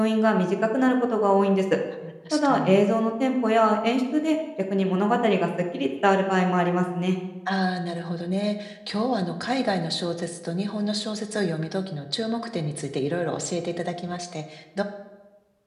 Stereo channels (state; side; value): identical; both; correlation 1.00